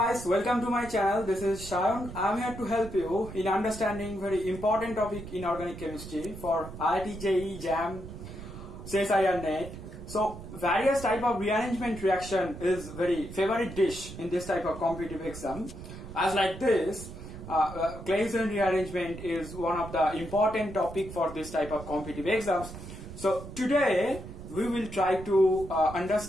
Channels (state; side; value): noise; right; rumble, 12 dB below the sound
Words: welcome to my channel. This is Shayan. I am here to help you in understanding very important topic in organic chemistry for IIT, JEE, JAM, CSIR NET. So various type of rearrangement reaction is very favorite dish in this type of competitive exam. As like this, Claisen rearrangement is one of the important topic for this type of competitive exams. So today we will try to